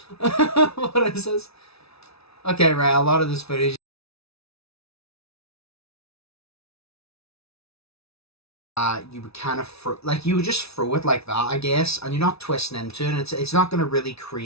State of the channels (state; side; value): late; right; 0.79 ms